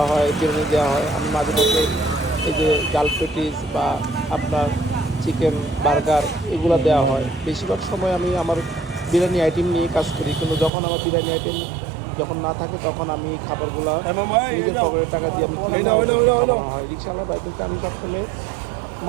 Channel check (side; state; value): left; drops out; at 10.7 s